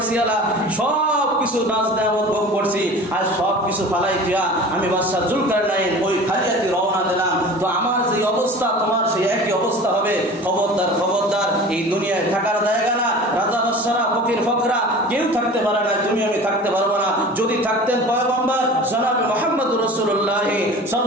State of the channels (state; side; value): normal; both; correlation 0.39